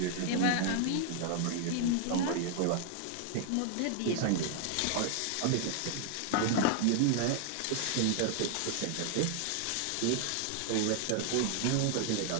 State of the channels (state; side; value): different; both; correlation 0.00